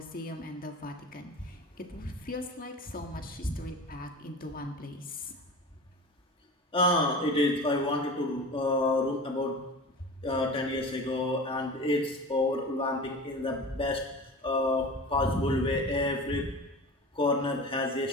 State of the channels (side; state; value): both; normal; correlation 0.34